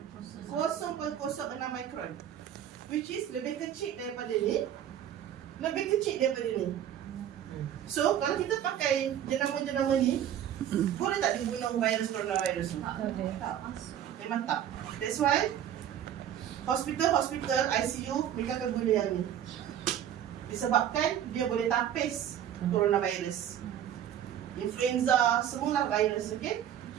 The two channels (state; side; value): quieter; left; 10.3 dB